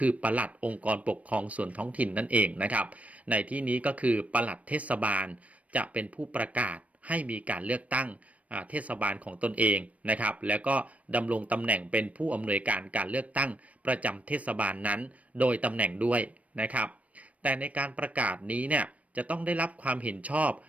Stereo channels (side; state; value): left; late; 0.067 ms